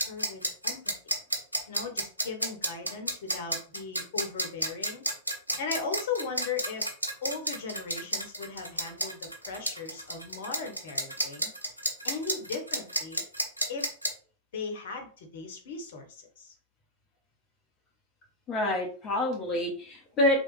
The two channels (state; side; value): inverted; both; correlation -0.33